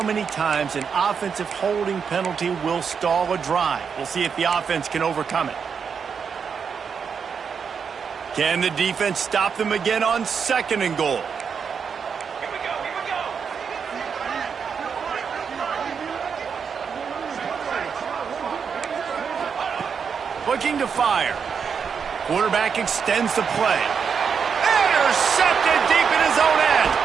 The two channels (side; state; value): left; quieter; 6.4 dB